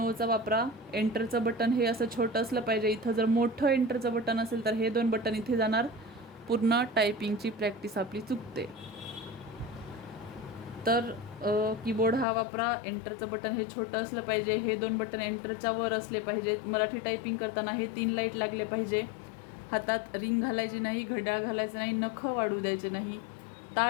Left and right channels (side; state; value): right; drops out; at 12.2 s